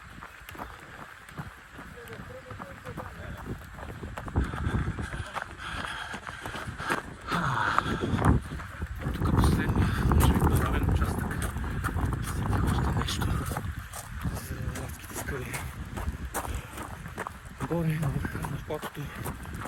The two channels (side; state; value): both; identical; correlation 1.00